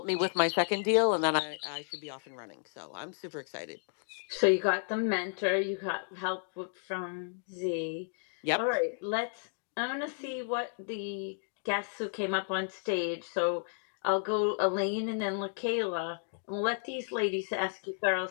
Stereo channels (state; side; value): silent; right; digital silence